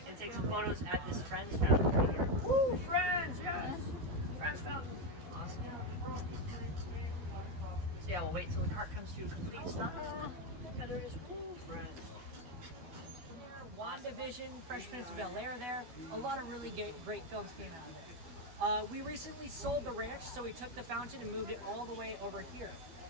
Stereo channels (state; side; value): late; left; 12 ms